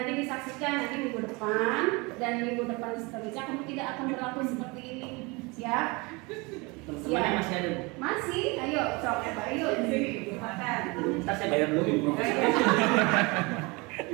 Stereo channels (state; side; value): quieter; left; 26.6 dB